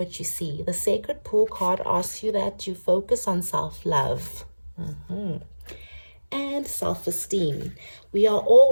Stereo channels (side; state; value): both; inverted; correlation -1.00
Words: what you see? The Sacred Pool card asks you that you focus on self-love. And self-esteem. We are